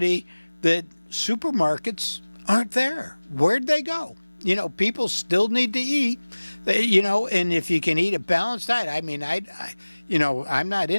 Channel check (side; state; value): both; inverted; correlation -1.00